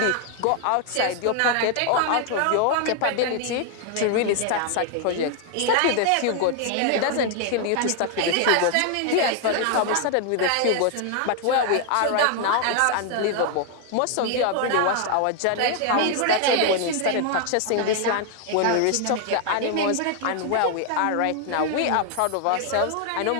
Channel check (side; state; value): both; different; correlation 0.00